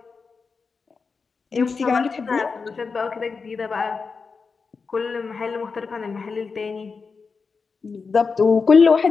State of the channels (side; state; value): right; quieter; 4.9 dB